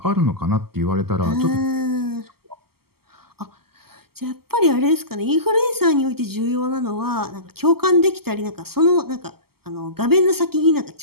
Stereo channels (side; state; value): left; late; 0.95 ms